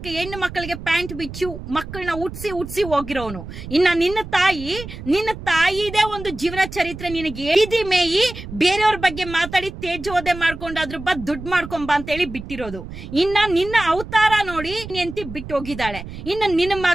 ಹೆಣ್ಣು ಮಕ್ಕಳಿಗೆ ಪ್ಯಾಂಟ್ ಬಿಚ್ಚಿ ಮಕ್ಕಳನ್ನ ಉಟ್ಸಿ ಹೋಗಿರೋನು. ಇನ್ನ ನಿನ್ನ ತಾಯಿದೇ ಒಂದು ಜೀವನ ಚರಿತ್ರೆ ನಿನಗೆ ಎದಿ ಮೇಯಿ ಬೇರೆಯವ್ರ ಬಗ್ಗೆ ಮಾತಾಡಿ ತೇಜೋದೆ ಮಾಡ್ಕೊಂಡಾದ್ರು ದುಡ್ಡು ಮಾಡ್ಕೊಂಬ ಅಂತ ಹೇಳಿ ಬಿಟ್ಟಿರೋದು. ಇನ್ನ ನಿನ್ನ ಅವತಾರ ನೋಡಿ ಎಂತಿ ಬಿಟ್ಟು ಹೋಗಿದ್ದಾಳೆ. ಇನ್ನ ನಿನ್ನ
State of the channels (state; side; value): noise; right; rumble, 11 dB below the sound